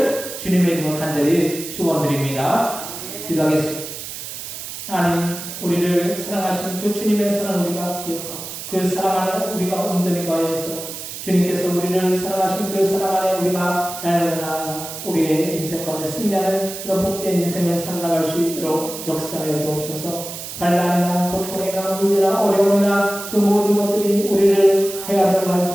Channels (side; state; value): right; noise; hiss, 9 dB below the sound